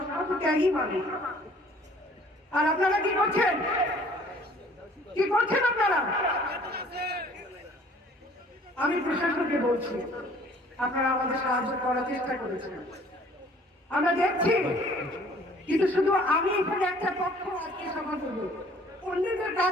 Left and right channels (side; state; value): both; normal; correlation 0.55